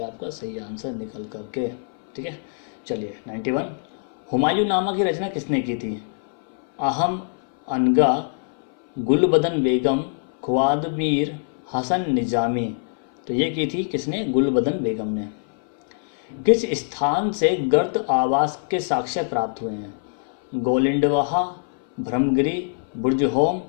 आपका सही आंसर निकल करके, ठीक है। चलिए 91 हुमायूं नामा की रचना किसने की थी, अहम अनगा, गुलबदन बेगम, ख्वादमीर हसन निजामी, तो ये की थी किसने, गुलबदन बेगम ने। किस स्थान से गर्द आवास के साक्ष्य प्राप्त हुए हैं, गोलिंडवाहा, ब्रह्मगिरी, बुर्जहोम,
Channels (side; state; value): right; silent; 59 dB below the other